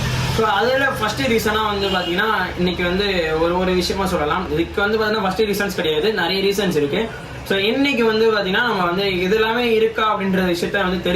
ஸோ அதில் ஃபஸ்ட்டு ரீசனாக வந்து பார்த்தீங்கன்னா இன்றைக்கி வந்து ஒரு விஷயமா சொல்லலாம். இதுக்கு வந்து பார்த்தீங்கன்னா ஃபஸ்ட்டு ரீசன்ஸ் கிடையாது, நிறைய ரீசன்ஸ் இருக்குது. ஸோ இன்னைக்கு வந்து பார்த்தீங்கன்னா நம்ம வந்து இது எல்லாமே இருக்கா அப்படின்ற விஷயத்த வந்து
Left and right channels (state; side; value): identical; both; correlation 1.00